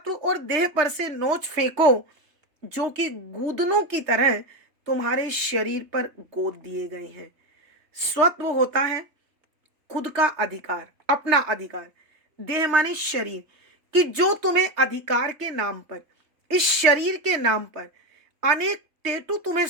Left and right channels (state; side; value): late; left; 3.5 ms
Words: और देह पर से नोच फेंको जो कि गूदनों की तरह तुम्हारे शरीर पर गोद दिए गए हैं। स्वत्व होता है खुद का अधिकार, अपना अधिकार। देह माने शरीर, कि जो तुम्हें अधिकार के नाम पर, इस शरीर के नाम पर अनेक टेटू तुम्हें